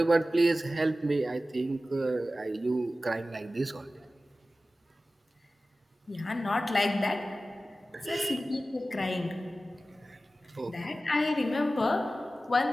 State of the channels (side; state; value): both; normal; correlation 0.95